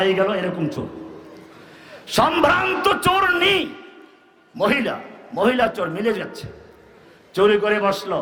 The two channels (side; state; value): both; identical; correlation 1.00